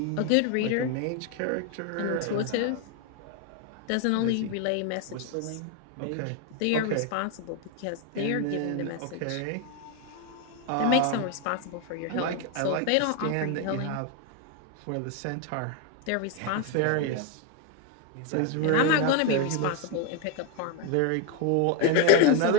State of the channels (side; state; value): both; different; correlation 0.01